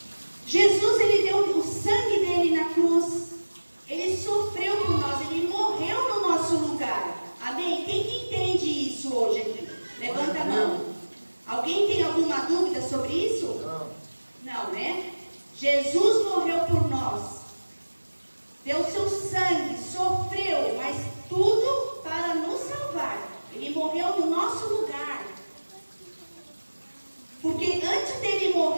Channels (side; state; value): both; inverted; correlation -1.00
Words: Jesus, ele deu o sangue dele na cruz, ele sofreu por nós, ele morreu no nosso lugar. Amém? Quem que entende isso hoje aqui? Levanta a mão. Alguém tem alguma dúvida sobre isso? Não. Não, né? Jesus morreu por nós, deu seu sangue, sofreu, mas tudo para nos salvar. Ele morreu no nosso lugar. Porque antes dele